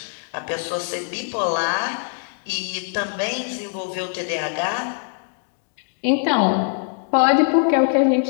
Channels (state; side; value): silent; right; digital silence